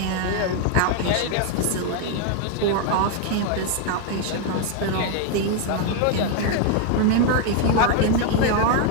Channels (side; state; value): both; different; correlation 0.01